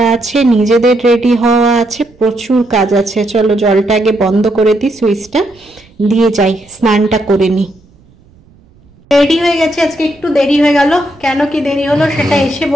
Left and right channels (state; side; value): noise; right; rumble, 29 dB below the sound